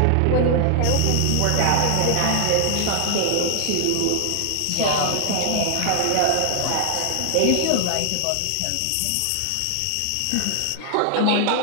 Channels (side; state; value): both; different; correlation 0.00